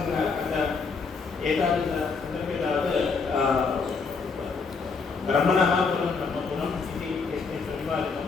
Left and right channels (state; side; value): quieter; right; 4.9 dB